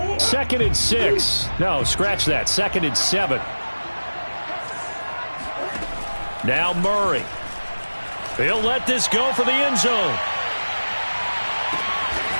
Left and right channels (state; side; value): inverted; both; correlation -1.00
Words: 2nd and 6. No, scratch that. 2nd and 7. Now Murray. He'll let this go for the end zone.